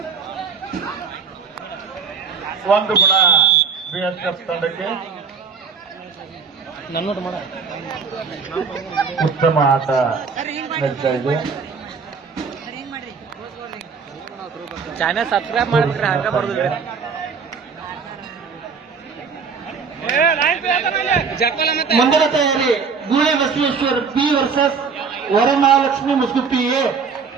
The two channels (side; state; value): left; quieter; 5.6 dB